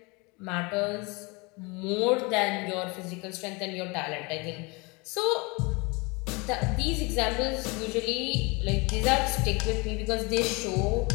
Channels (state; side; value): quieter; right; 27.4 dB